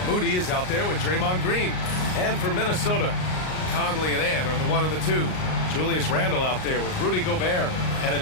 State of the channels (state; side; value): late; right; 38 ms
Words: Moody is out there with Draymond Green. And for Minnesota, Conley and Ann are the 1 and the 2. Julius Randle out there with Rudy Gobert. And